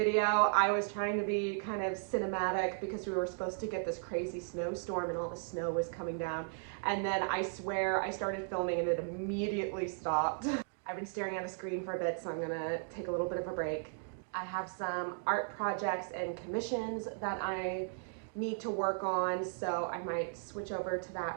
I was trying to be kind of cinematic because we were supposed to get this crazy snowstorm and all the snow was coming down. And then I swear I started filming and it immediately stopped. I've been staring at a screen for a bit, so I'm gonna take a little bit of a break. I have some art projects and commissions that I need to work on, so I might switch over to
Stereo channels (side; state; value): left; silent; digital silence